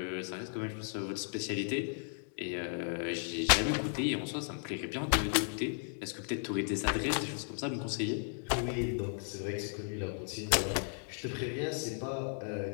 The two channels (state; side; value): silent; right; 54 dB below the other